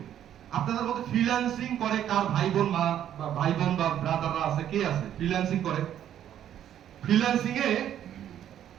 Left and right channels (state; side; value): quieter; left; 10.7 dB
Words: আপনাদের মধ্যে ফ্রিল্যান্সিং করে কার ভাই বোন বা ব্রাদাররা আছে কে আছে ফ্রিল্যান্সিং করে ফ্রিল্যান্সিং এ